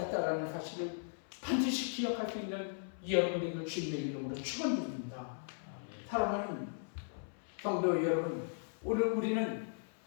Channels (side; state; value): right; silent; 53 dB below the other